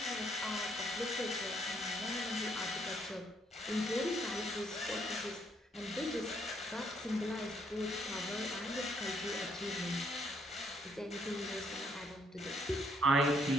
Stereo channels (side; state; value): both; normal; correlation 0.70